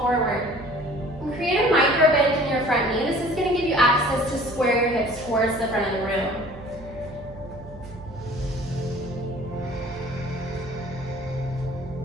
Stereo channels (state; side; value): noise; right; hum, 16 dB below the sound